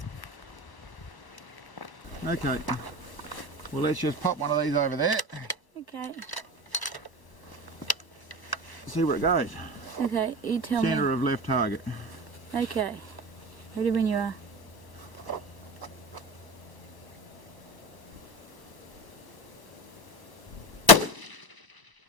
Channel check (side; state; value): right; late; 1.0 ms